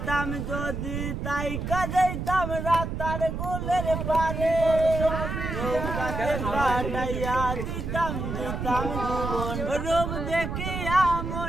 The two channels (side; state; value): right; noise; rumble, 4 dB below the sound